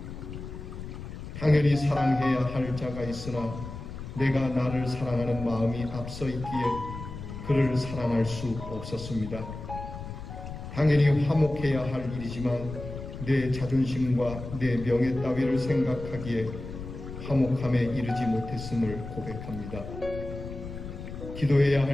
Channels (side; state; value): left; noise; rumble, 10 dB below the sound